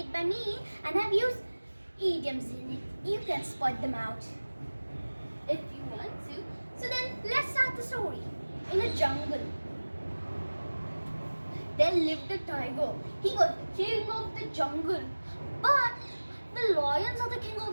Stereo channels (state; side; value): inverted; both; correlation -1.00